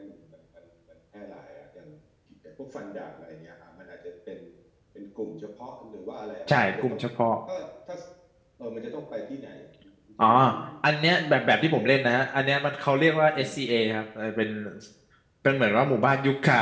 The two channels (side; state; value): both; identical; correlation 1.00